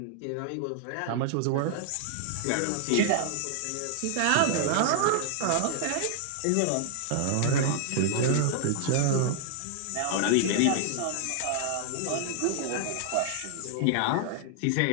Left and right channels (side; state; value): both; different; correlation 0.00